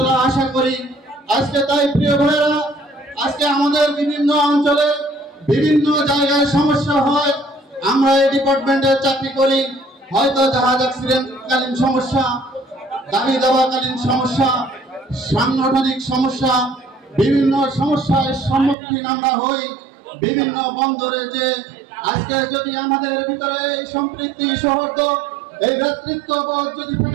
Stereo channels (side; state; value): left; drops out; at 18.8 s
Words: আশা করি। আজকে তাই প্রিয় ভাইরা, আজকে আমাদের বিভিন্ন অঞ্চলে বিভিন্ন জায়গায় সমস্যা হয়। আমরা এই ডিপার্টমেন্টে চাকরি করি, হয়তো জাহাজ অ্যাক্সিডেন্টকালীন সমস্যা, দাবি দাবাকালীন সমস্যা, সাংগঠনিক সমস্যা, বিভিন্ন সমস্যার সম্মুখীন আমরা হই। বিভিন্ন বন্দরে যে আজকে যদি আমাদের ভিতরে এই সম্পৃক্তি সৌহার্দ্য, এই নেতৃত্ববোধ যদি